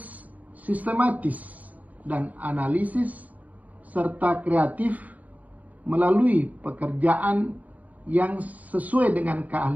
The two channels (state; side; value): late; left; 0.077 ms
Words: sistematis, dan analisis serta kreatif melalui pekerjaan yang sesuai dengan